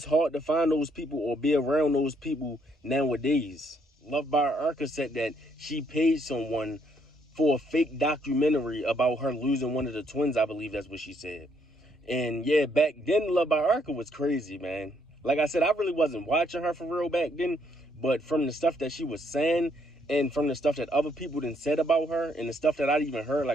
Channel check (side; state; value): both; normal; correlation 0.70